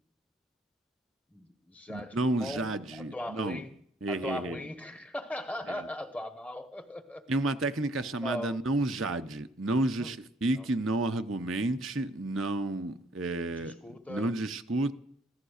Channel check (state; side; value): normal; both; correlation 0.64